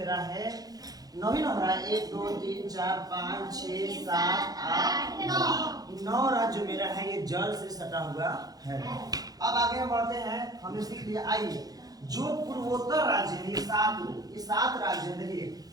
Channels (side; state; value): left; late; 0.18 ms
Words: है, 9 ही 9 रहा है। 1 2 3 4 5 6 7 8 9 राज्य मेरा है, ये जल से सटा हुआ है। अब आगे हम बढ़ते हैं, हमने सीख लिया। आइए जो पूर्वोत्तर राज्य है, ये 7 राज्य है। देखिए